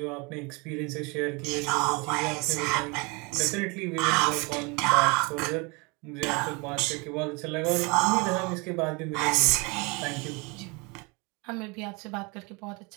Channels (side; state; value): left; quieter; 28.7 dB